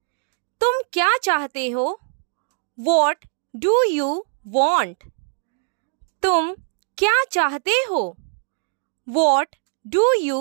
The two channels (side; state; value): left; silent; digital silence